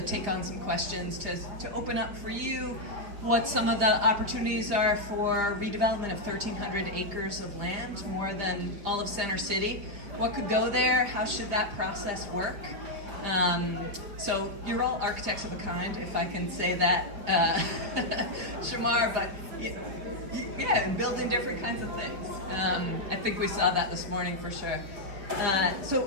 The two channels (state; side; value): late; left; 4.9 ms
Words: take on some questions, to open up for you what some of the opportunities are for redevelopment of 1,300 acres of land, more than all of Center City. What could go there? How should that process work? So you're all architects of a kind, if I can say that, Shamar, but yeah, building different kinds of things. I think we saw that this morning for sure.